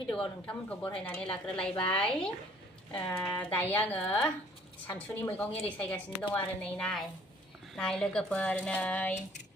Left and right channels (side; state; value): both; normal; correlation 0.57